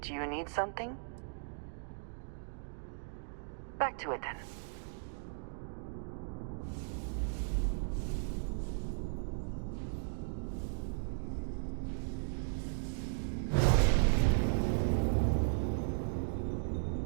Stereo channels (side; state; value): left; silent; digital silence